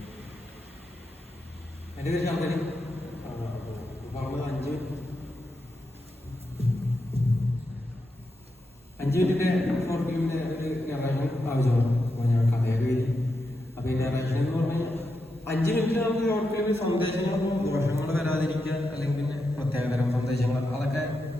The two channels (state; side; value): normal; both; correlation 0.86